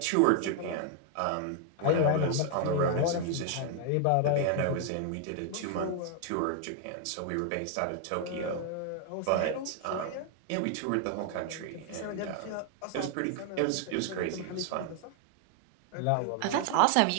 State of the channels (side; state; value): both; different; correlation 0.00